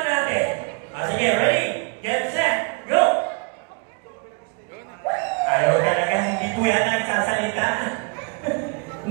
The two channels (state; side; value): quieter; left; 33.5 dB